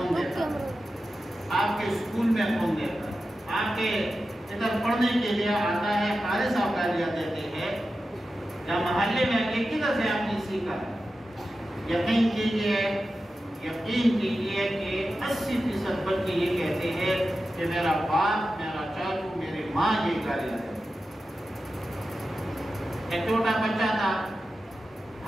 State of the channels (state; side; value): normal; both; correlation 0.92